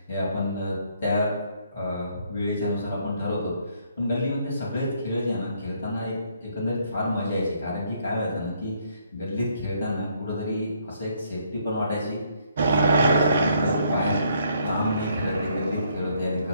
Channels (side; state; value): both; inverted; correlation -0.69